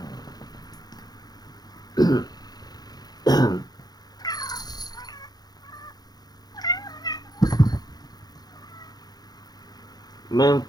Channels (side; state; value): right; late; 0.19 ms